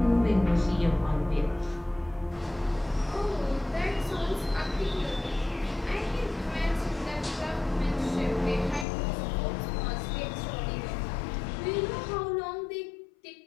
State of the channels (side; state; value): right; drops out; at 8.8 s